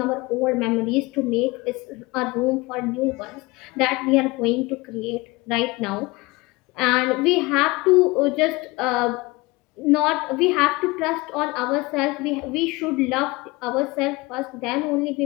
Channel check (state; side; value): quieter; right; 23.2 dB